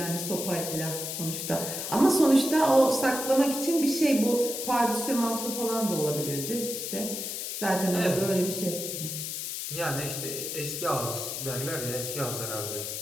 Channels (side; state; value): left; noise; hiss, 5 dB below the sound